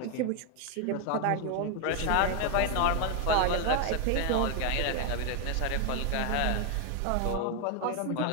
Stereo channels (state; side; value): different; both; correlation 0.01